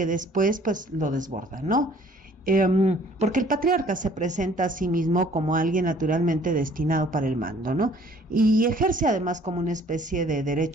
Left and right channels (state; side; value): normal; both; correlation 0.56